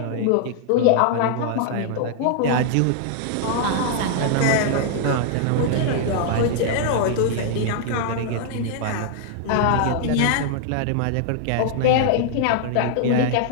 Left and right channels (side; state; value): both; different; correlation -0.01